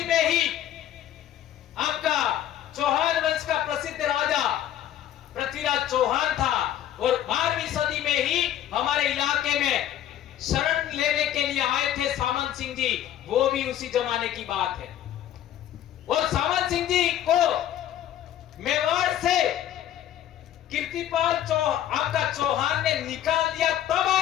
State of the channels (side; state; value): right; quieter; 11.5 dB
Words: में ही आपका चौहान वंश का प्रसिद्ध राजा पृथ्वीराज चौहान था। और 12वीं सदी में ही हमारे इलाके में शरण लेने के लिए आए थे सामंत सिंह जी, वो भी उसी जमाने की बात है। और सामंत सिंह जी को मेवाड़ से कीर्तिपाल आपका चौहान ने निकाल दिया, तब